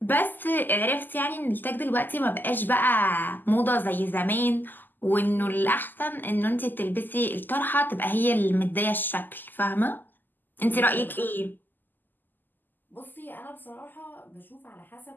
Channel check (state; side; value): late; right; 0.089 ms